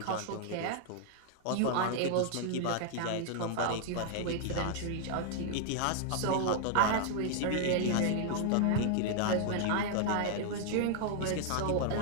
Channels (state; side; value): different; both; correlation 0.00